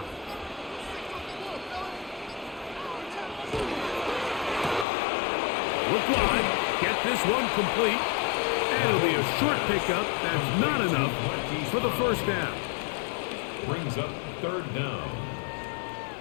Look wide. Get this one complete. And it'll be a short pickup. That's not enough for the first down. Brings up 3rd down.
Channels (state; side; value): drops out; right; at 4.9 s